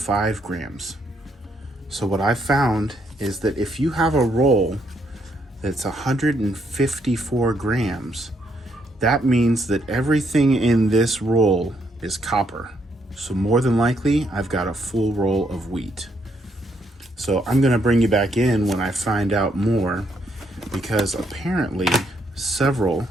grams. So what I found is that if you have a roll that's 154 grams, that means that everything in this roll is copper. So more than likely, I've got a full roll of wheat. So I'm gonna bring you back in when I find out more, because apparently several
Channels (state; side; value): normal; both; correlation 0.74